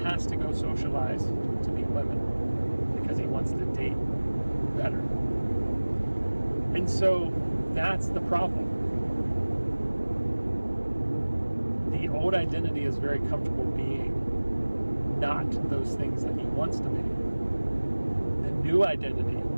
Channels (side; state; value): both; inverted; correlation -1.00